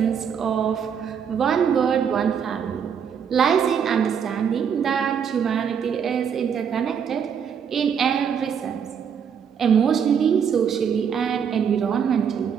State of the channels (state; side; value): quieter; left; 7.5 dB